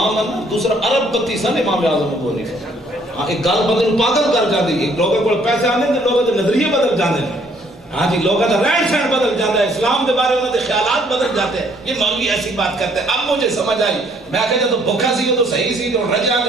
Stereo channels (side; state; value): both; normal; correlation 0.64